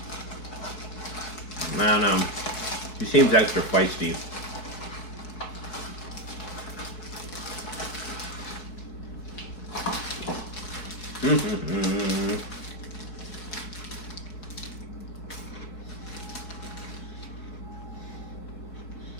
I don't know. He seems extra feisty.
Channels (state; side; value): late; right; 4.6 ms